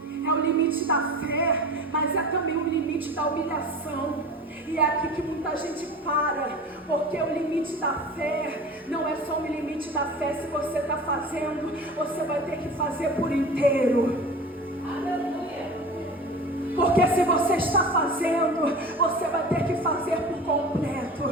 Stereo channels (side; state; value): both; normal; correlation 0.35